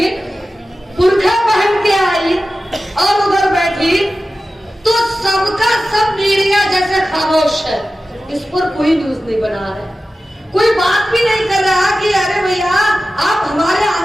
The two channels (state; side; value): normal; both; correlation 0.94